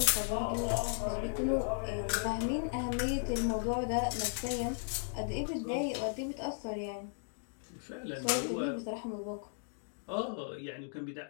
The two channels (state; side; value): silent; right; digital silence